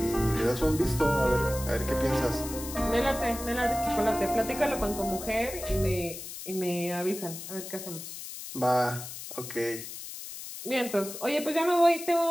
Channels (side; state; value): left; noise; hiss, 10 dB below the sound